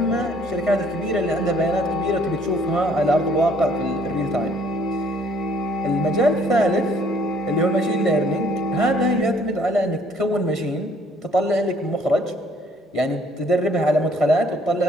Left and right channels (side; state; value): both; normal; correlation 0.61